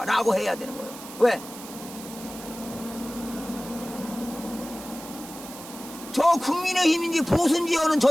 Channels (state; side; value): noise; right; hiss, 14 dB below the sound